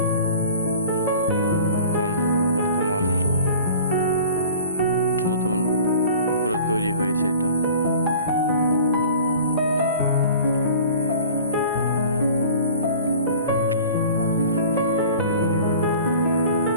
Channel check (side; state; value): both; inverted; correlation -0.43